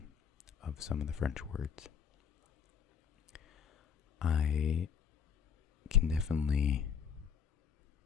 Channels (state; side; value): quieter; right; 7.3 dB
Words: of some of the French words. I can definitely